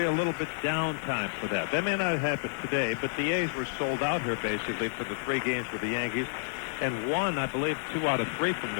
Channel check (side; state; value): right; silent; 58 dB below the other